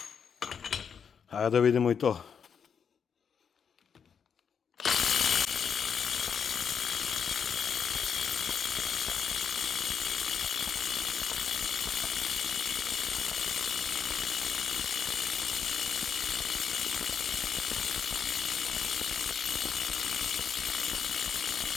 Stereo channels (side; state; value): right; quieter; 7.0 dB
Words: Hajde da vidimo i to.